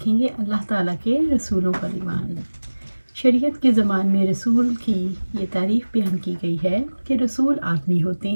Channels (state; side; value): inverted; both; correlation -1.00